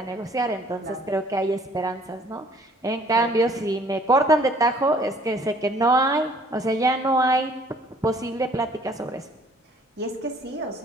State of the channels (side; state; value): both; normal; correlation 0.57